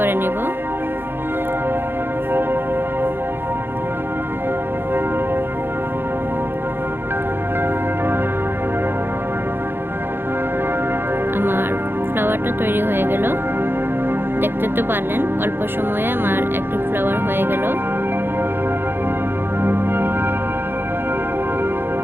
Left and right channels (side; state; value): left; late; 0.10 ms